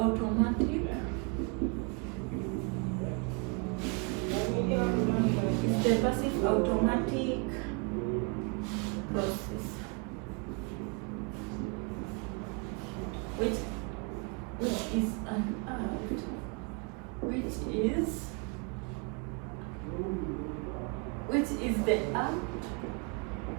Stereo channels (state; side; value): quieter; left; 32.7 dB